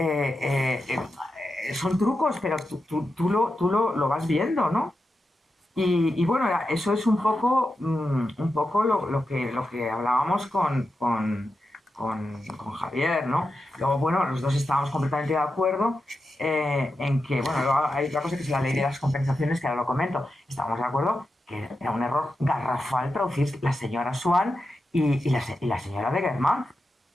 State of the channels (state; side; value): normal; both; correlation 0.89